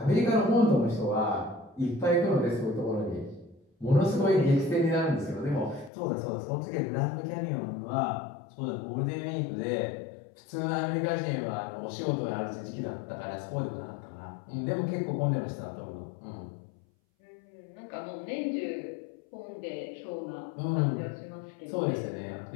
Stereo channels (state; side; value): drops out; right; at 5.9 s